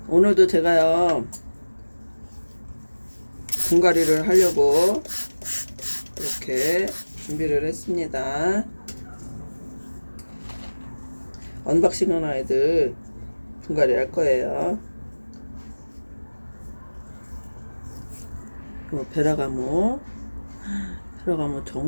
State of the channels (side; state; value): both; inverted; correlation -1.00